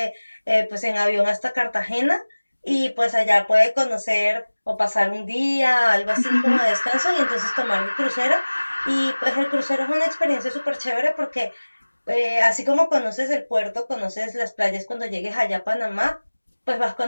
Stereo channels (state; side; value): inverted; both; correlation -1.00